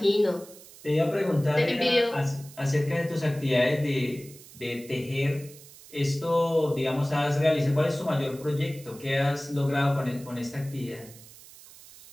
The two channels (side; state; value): right; noise; hiss, 20 dB below the sound